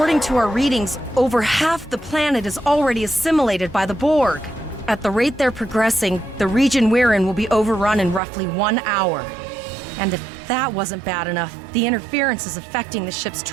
to our readings, over half the planet is already assimilated by the Borg. At the rate they're progressing, the region we're in will be overrun in roughly 1 hour. And if that wasn't bad enough, the interference is affecting the ship's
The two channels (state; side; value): drops out; left; at 8.2 s